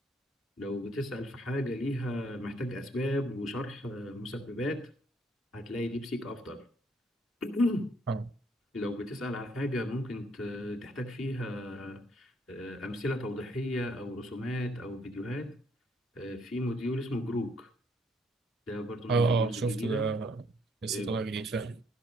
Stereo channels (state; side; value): normal; both; correlation 0.68